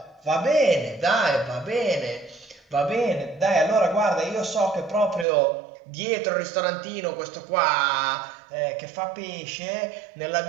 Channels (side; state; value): left; drops out; at 5.2 s